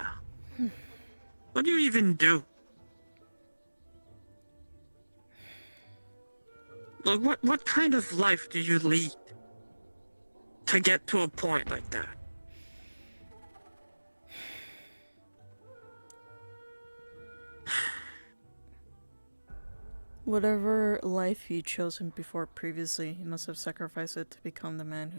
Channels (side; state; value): both; inverted; correlation -1.00